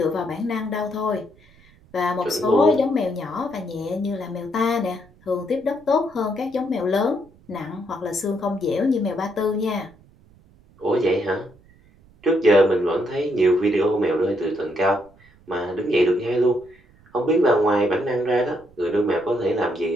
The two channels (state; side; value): noise; right; rumble, 28 dB below the sound